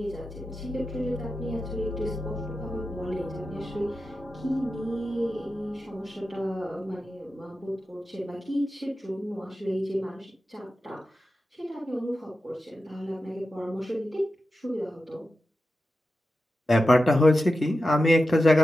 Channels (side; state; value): both; normal; correlation 0.92